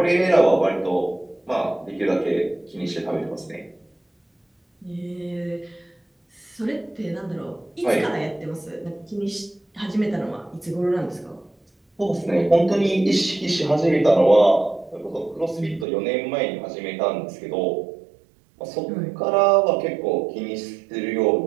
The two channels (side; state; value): left; drops out; at 15.9 s